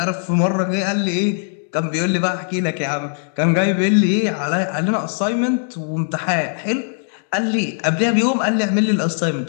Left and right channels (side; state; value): right; silent; 62 dB below the other